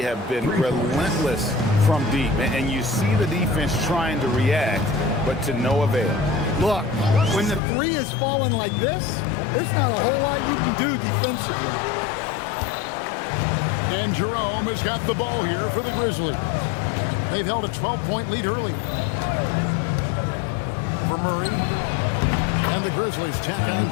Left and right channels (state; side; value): drops out; right; at 7.6 s